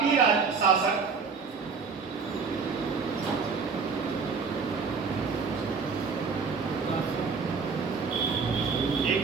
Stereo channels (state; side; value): quieter; left; 5.2 dB